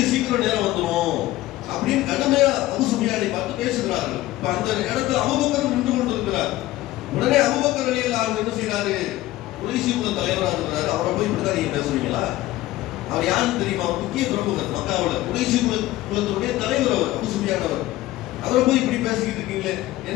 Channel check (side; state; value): right; quieter; 16.4 dB